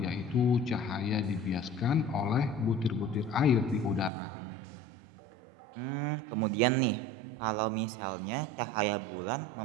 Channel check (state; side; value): drops out; left; at 4.1 s